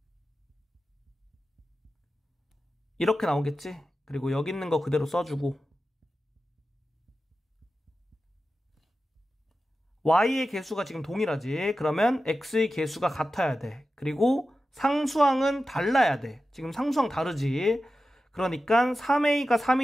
이렇게 나오겠지? 그리고 여기 있는 거 그대로 써주고 y의 개수가 지금 동일하지? 그러면 x의 개수가 같아야 돼. 그리고 상수항은 달라야 돼. 지금 상수항 다르지? 그러니까 3a가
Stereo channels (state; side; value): normal; both; correlation 0.93